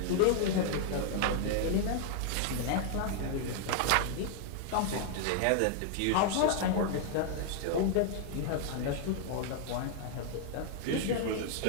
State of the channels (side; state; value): both; different; correlation 0.00